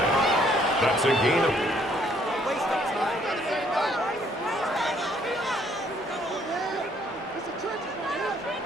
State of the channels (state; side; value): normal; both; correlation 0.65